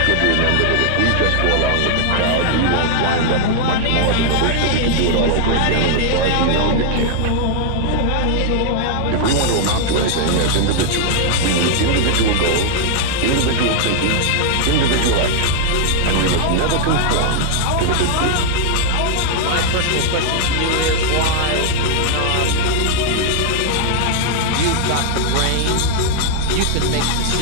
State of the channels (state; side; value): different; both; correlation 0.00